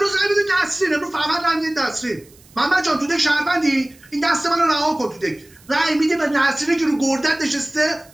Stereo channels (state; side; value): noise; right; hiss, 27 dB below the sound